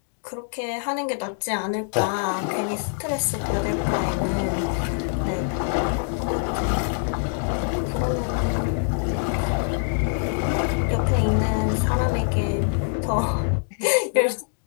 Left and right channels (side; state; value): right; silent; digital silence